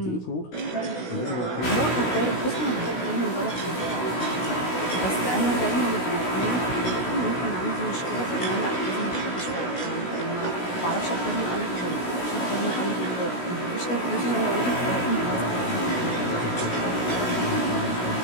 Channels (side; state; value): right; late; 16 ms